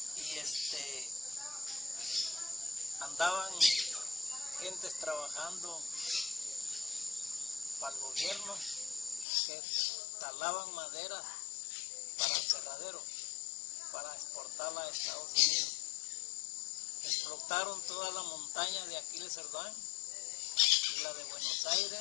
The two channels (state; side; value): drops out; right; at 9.2 s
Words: y andaban gentes trabajando para el gobierno que talaban madera para el cerradero, para exportarla a Estados Unidos. Explotaron toda la montaña de Aquiles Cerdán y la de Buenos